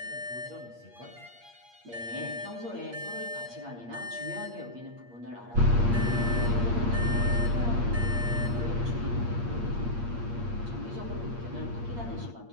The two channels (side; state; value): left; late; 8.5 ms